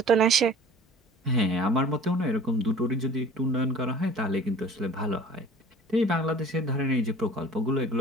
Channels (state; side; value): normal; both; correlation 0.44